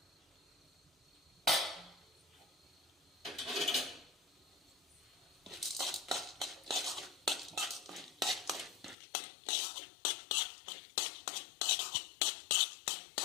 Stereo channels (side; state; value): right; drops out; at 9.0 s